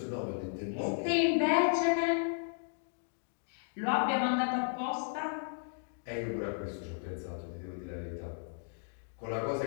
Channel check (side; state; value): right; silent; digital silence